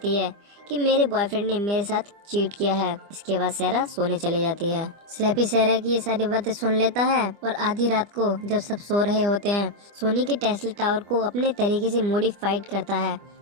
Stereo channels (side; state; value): left; late; 25 ms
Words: है कि मेरे बॉयफ्रेंड ने मेरे साथ चीट किया है। इसके बाद सहरा सोने चली जाती है। स्लैपी सहरा की ये सारी बातें सुन लेता है और आधी रात को जब सब सो रहे होते हैं, सोनी के टेस्ला टावर को अपने तरीके से मॉडिफाइड करता है